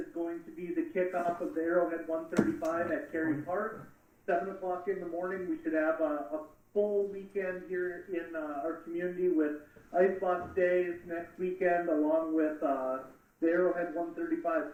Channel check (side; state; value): both; identical; correlation 1.00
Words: going to be the kickoff of the Arrowhead 135 at Cary Park. 7 o'clock in the morning. We should have a full weekend here in our community with Icebox Days next weekend, along with the Arrowhead 135.